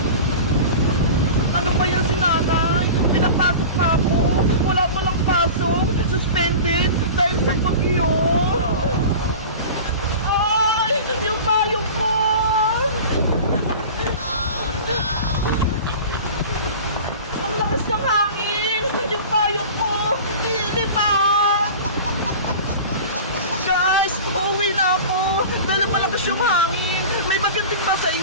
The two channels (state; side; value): inverted; both; correlation -0.35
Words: Ano ba yan si nanay? Pinapasok pa ako. Wala palang pasok. Suspended dahil sa bagyo. Ay! Yung payong ko! Oh no! Ang lakas ng hangin! Yung payong ko! Nilipad! Guys! Uuwi na ako! Dahil malakas yung hangin! May magating ba sa